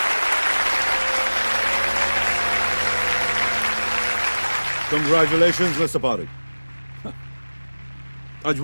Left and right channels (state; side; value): inverted; both; correlation -1.00